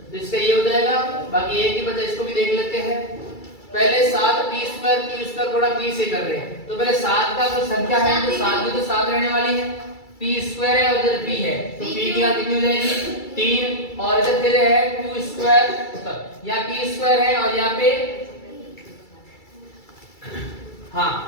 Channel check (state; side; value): late; right; 2.3 ms